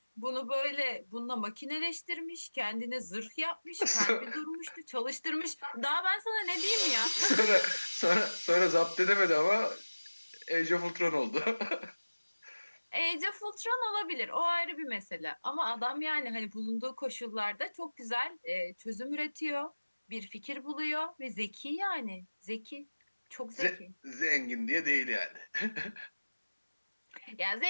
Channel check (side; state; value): both; inverted; correlation -1.00